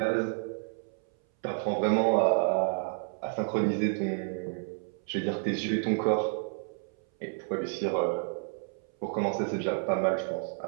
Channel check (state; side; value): silent; left; 58 dB below the other